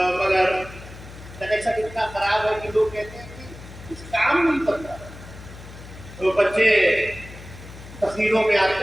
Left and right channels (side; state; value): left; noise; hum, 16 dB below the sound